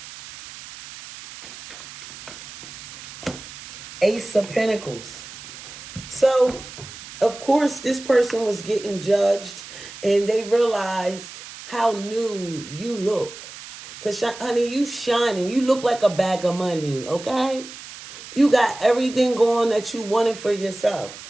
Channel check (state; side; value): noise; right; hiss, 14 dB below the sound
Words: Ace of Pentacles. So, of course, this person was getting judged and they realized how new you look. Because, honey, you shining. You look like a bag of money, okay? You got everything going that you wanted for yourself.